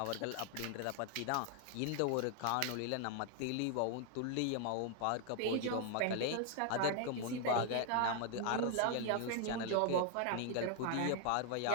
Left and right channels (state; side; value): different; both; correlation 0.00